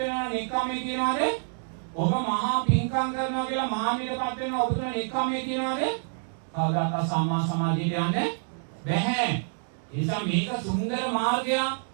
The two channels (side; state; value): left; silent; digital silence